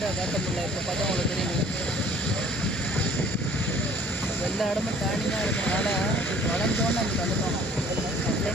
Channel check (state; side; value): normal; both; correlation 0.53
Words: காட்ட முடியல. இப்போ பார்த்தா உங்களுக்கு தெரியுது எல்லா இடமும் டேர்னிங்காக இருக்கிறதுனால வளைஞ்சோன்னு நமக்கு வந்துட்டோம்.